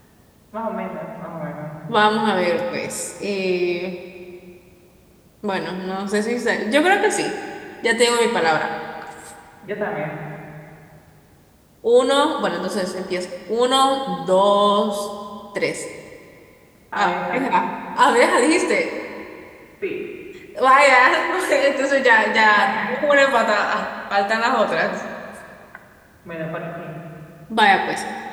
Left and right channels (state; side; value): identical; both; correlation 1.00